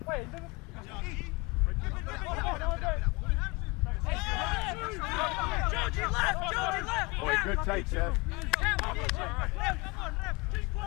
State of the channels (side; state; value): right; quieter; 26.4 dB